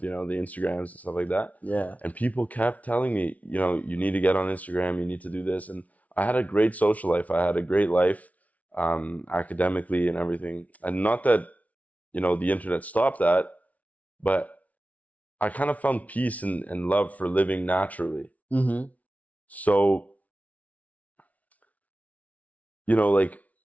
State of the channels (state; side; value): late; right; 0.070 ms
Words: Instagrams and stuff like that. Yeah. And people kept telling me, you need to get on Instagram, you need to do this. And I had a great social life. I had a great life, academically and everything. And not that, the internet stopped that, but I kind of found peace and love for living naturally. So, like,